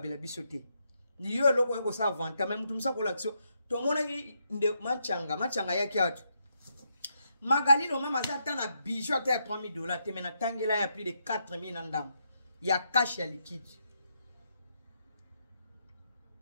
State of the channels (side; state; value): both; inverted; correlation -0.79